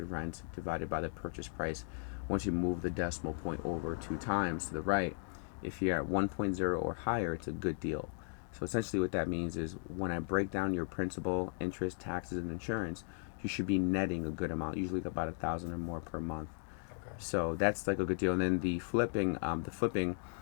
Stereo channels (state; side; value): silent; right; 53 dB below the other